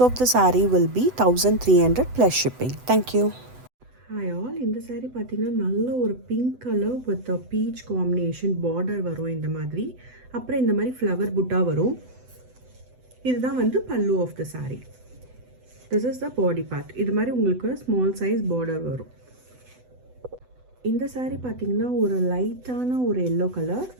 of the saree will be 1300 plus shipping. Thank you. Hi all, இந்த saree பார்த்தீங்கன்னா நல்ல ஒரு pink colour with beach combination border வரும் இந்த மாதிரி. அப்புறம் இந்த மாதிரி ஃப்ளவர் புட்டா வரும். இதுதான் வந்து pallu of the saree. This is the body part. இது மாதிரி உங்களுக்கு ஸ்மால் சைஸ் பார்டர் வரும். இந்த saree பார்த்தீங்கன்னா ஒரு லைட்டான ஒரு எல்லோ கலர்.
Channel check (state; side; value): late; left; 8.0 ms